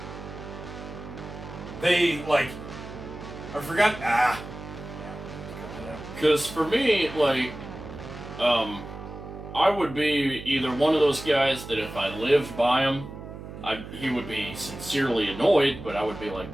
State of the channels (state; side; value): noise; right; hum, 12 dB below the sound